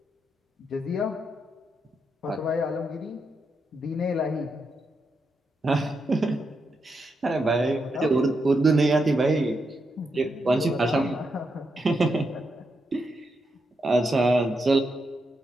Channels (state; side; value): normal; both; correlation 0.83